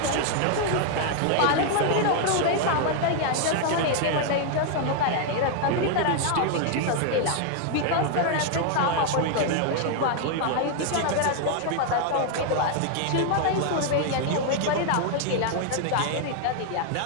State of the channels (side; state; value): both; different; correlation 0.00